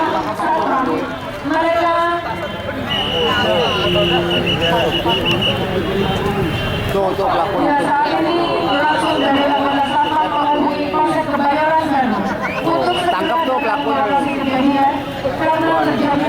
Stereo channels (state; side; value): identical; both; correlation 1.00